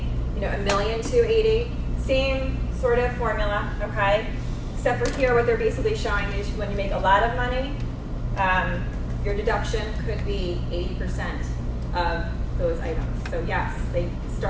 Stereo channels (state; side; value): identical; both; correlation 1.00